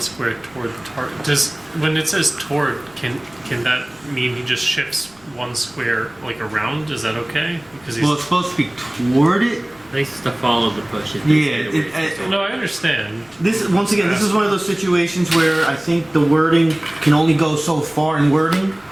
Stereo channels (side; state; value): left; noise; rumble, 29 dB below the sound